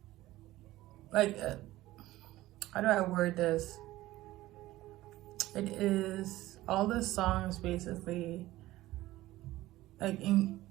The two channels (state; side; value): quieter; left; 16.6 dB